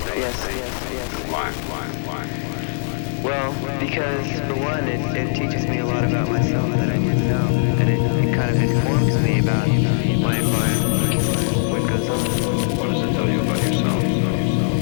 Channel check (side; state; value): right; silent; 61 dB below the other